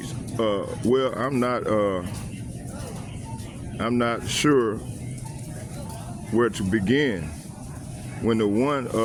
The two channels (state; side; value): identical; both; correlation 1.00